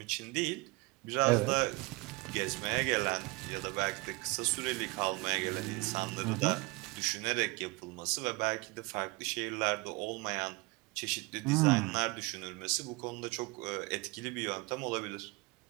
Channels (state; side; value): quieter; left; 25.0 dB